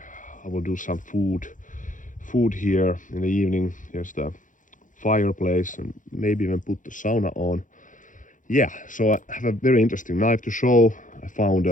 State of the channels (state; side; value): late; right; 0.38 ms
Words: will do some food here in the evening. Here's the fireplace and maybe even put the sauna on. Yeah, so I have a very interesting knife to show. I found